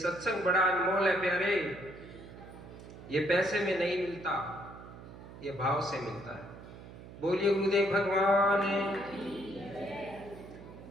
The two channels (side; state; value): right; noise; hum, 16 dB below the sound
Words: बड़ा अनमोल है प्यारे, ये पैसे में नहीं मिलता, ये भाव से मिलता है। बोलिए गुरुदेव भगवान।